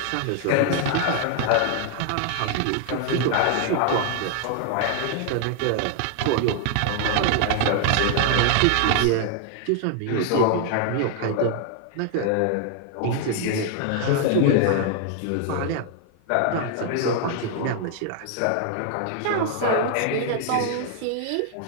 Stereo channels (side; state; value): both; different; correlation 0.00